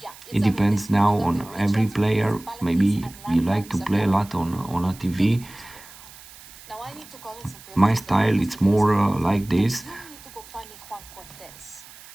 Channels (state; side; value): noise; right; hiss, 20 dB below the sound